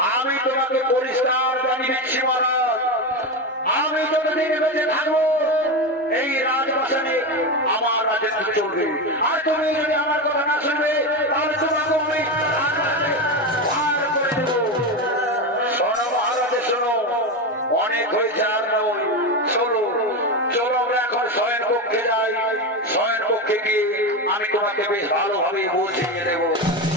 আমি তোমাকে পরিষ্কার জানিয়ে দিচ্ছি মহারাজ, আমি যতদিন বেঁচে থাকবো এই রাজবাসনে আমার রাজত্ব চলবে। আর তুমি যদি আমার কথা না শুনবে তাহলে তোমাকে আমি ভার করে দেব। শোনো মহারাজ, শোনো, অনেক হয়েছে আর নয়। চলো চলো আমরা এখন শয়ন কক্ষে যাই। শয়ন কক্ষে গিয়ে আমি তোমাকে বেশ ভালোভাবে বুঝিয়ে দেবো।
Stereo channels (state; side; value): normal; both; correlation 0.17